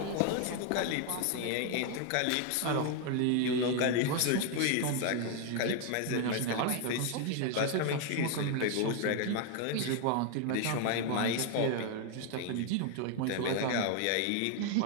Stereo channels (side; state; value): both; different; correlation 0.01